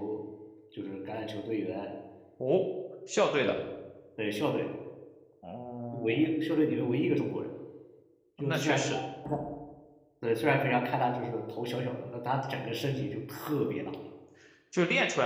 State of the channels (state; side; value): identical; both; correlation 1.00